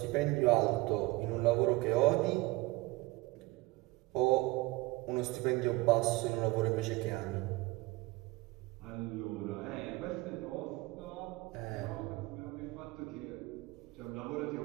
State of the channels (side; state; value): left; quieter; 21.9 dB